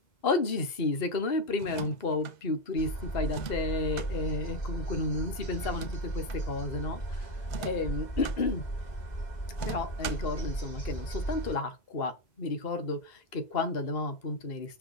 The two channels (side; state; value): right; late; 2.0 ms